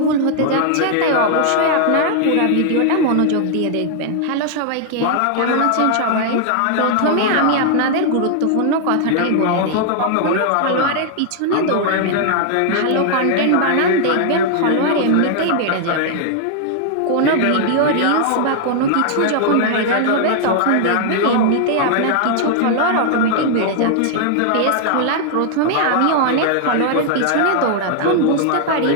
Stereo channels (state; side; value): different; both; correlation -0.01